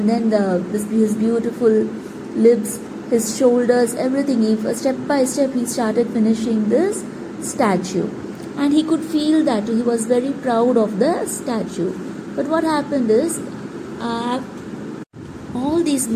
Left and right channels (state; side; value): identical; both; correlation 1.00